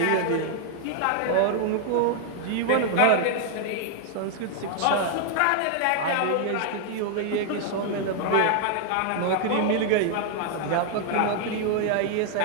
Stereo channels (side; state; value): both; different; correlation 0.00